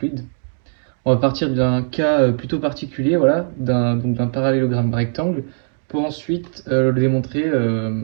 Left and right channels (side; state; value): left; silent; 62 dB below the other